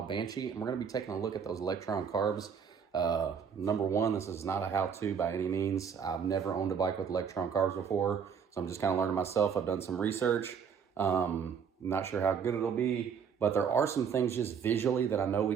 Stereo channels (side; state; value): left; quieter; 7.0 dB